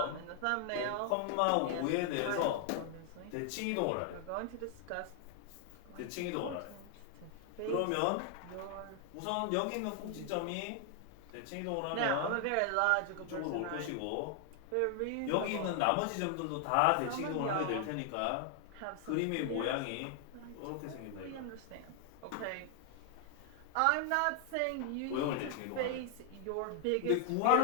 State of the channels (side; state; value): both; different; correlation 0.00